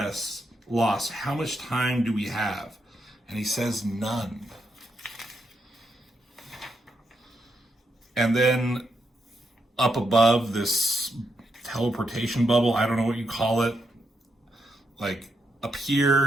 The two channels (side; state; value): both; normal; correlation 0.81